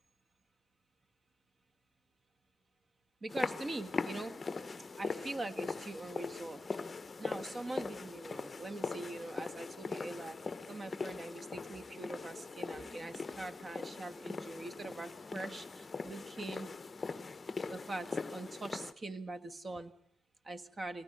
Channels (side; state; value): both; normal; correlation 0.90